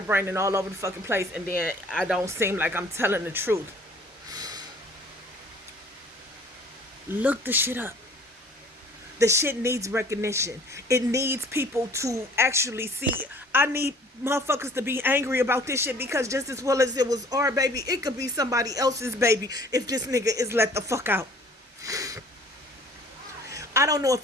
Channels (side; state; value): both; normal; correlation 0.52